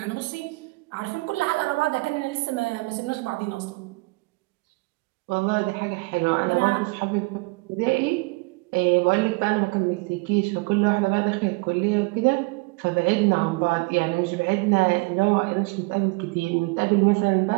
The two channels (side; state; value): left; quieter; 27.4 dB